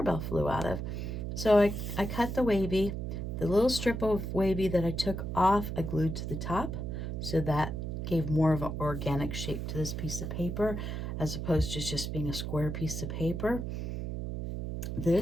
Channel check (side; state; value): right; noise; hum, 4 dB below the sound